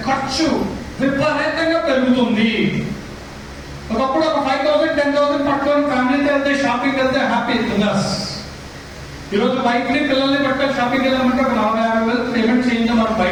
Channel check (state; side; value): identical; both; correlation 1.00